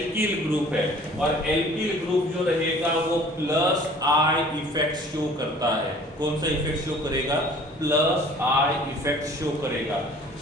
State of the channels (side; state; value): both; normal; correlation 0.50